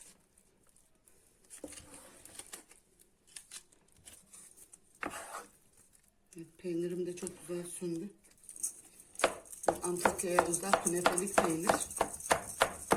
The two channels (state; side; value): identical; both; correlation 1.00